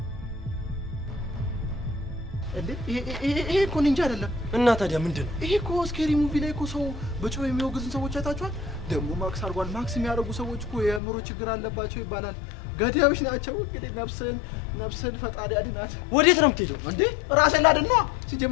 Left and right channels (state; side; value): drops out; right; at 11.0 s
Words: ይሄ እኮ ኒንጃ አይደለም እና ታዲያ ምንድነው ይሄ እኮ ስኬሪ ሙቪ ላይ እኮ ሰው በጮህ የሚወግዙን ሰዎች አይታችኋል ደግሞ ማክስ አርጓል ማክስ የሚያደርጉ ሰዎች እኮ የምሮ ችግር አለባቸው ይባላል ገዳዮች ናቸው እንግዲህ ነፍስን ፈጣሪ አድናት ወዴት ነው የምትሄደው እንዴ ራሴን ላድን ነው